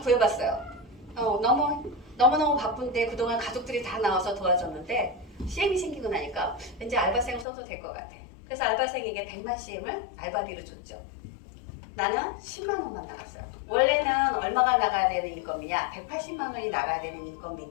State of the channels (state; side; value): drops out; right; at 7.5 s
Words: 너무너무 바쁜데 그동안 가족들이 다 나와서 도와줬는데 CM이 생기고 나니까 왠지 알바생을 써도 될 것 같아. 그래서 알바생에게 100만 CM을 알바비로 줬죠. 나는 10만 원만 나갔어요. 원래는 얼마가 나가야 되는 인건비냐? 180만 원이 나가야 되는